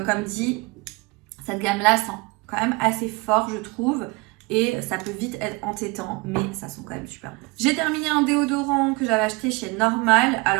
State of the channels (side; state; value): left; quieter; 25.8 dB